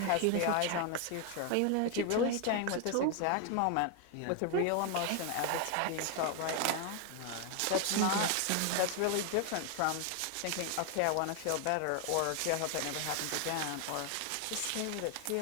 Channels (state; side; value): different; both; correlation 0.01